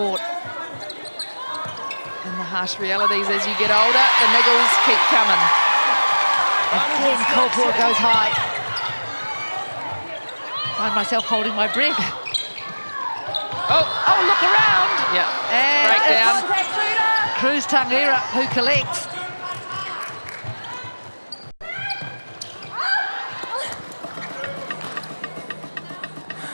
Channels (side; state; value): both; inverted; correlation -1.00